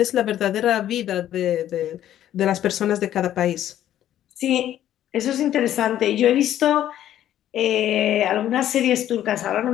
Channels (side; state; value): right; quieter; 11.8 dB